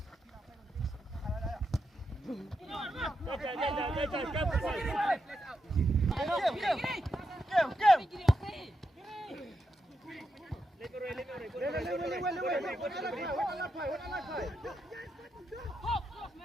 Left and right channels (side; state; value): both; normal; correlation 0.85